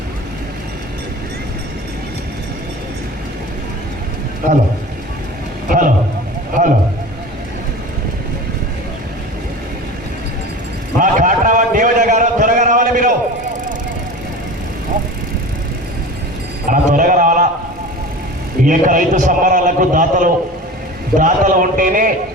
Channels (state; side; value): normal; both; correlation 0.34